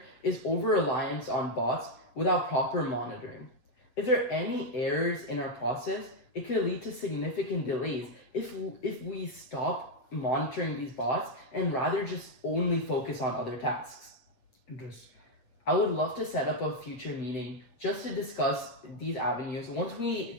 is over-reliance on bots without proper monitoring. If there are any errors in our process, it could lead to significant delays if we stop monitoring these bots and rather just only focus on other tasks. Interesting. I would love to set up a future meeting just to discuss these avenues once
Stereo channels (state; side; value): late; right; 8.2 ms